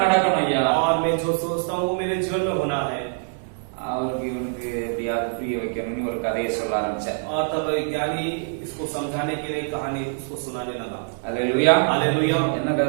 நடக்கணும் ஐயா. और मैं जो सोचता हूँ वो मेरे जीवन में होना है। அவருக்கு இவனுக்கு எப்படியாவது புரிய வைக்கணும்னு ஒரு கதையை சொல்ல ஆரம்பிச்சேன். और तब ज्ञानी इसको समझाने के लिए कहानी उसको सुनाने लगा। அல்லேலூயா. हालेलुया। என்ன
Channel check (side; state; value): left; silent; digital silence